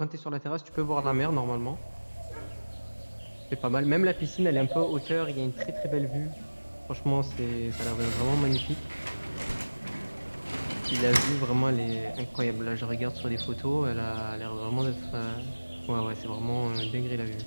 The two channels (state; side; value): inverted; both; correlation -1.00